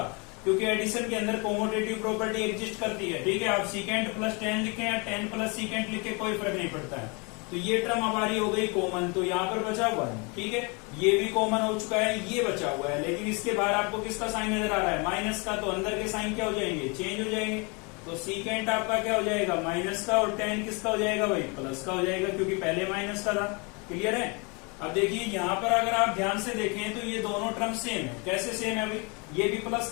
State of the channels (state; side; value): quieter; right; 31.0 dB